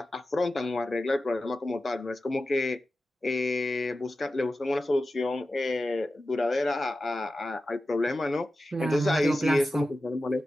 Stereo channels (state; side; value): normal; both; correlation 0.93